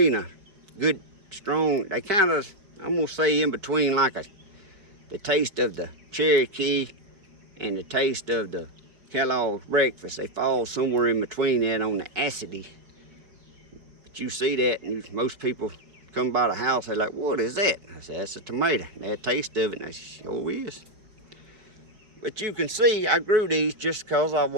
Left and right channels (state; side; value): late; left; 4.7 ms